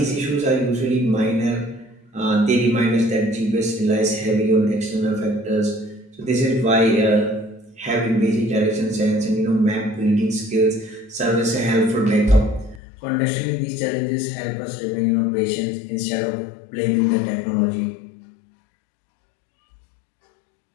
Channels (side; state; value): right; drops out; at 12.8 s